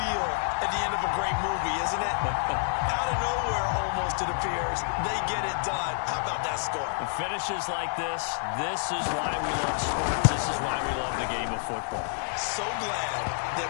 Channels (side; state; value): right; silent; digital silence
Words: at the end of a great movie, isn't it? Out of nowhere, almost, it appears, they get it done. How about that score? The finishes like this is why we love sports. This is why we love the game of football. So glad that